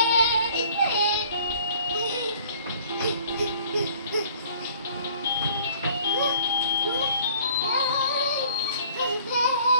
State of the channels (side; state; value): both; inverted; correlation -0.54